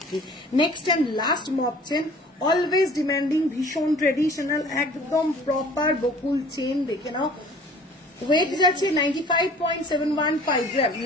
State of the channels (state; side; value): normal; both; correlation 0.50